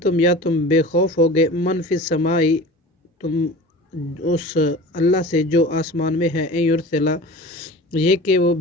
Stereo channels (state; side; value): normal; both; correlation 0.37